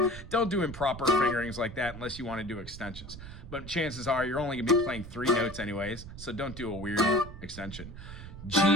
Don't do improper fingerings like that unless you want to do extensions. But chances are you're only going to be playing 3 notes anyways, so don't do a weird extension. G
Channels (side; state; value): right; noise; rumble, 12 dB below the sound